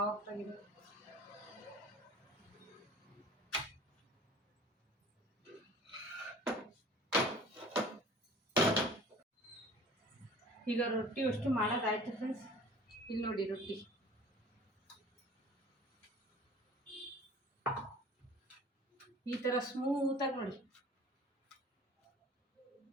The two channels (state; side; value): normal; both; correlation 0.46